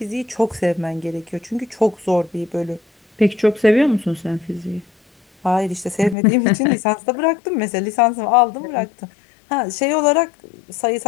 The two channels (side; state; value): right; drops out; at 6.2 s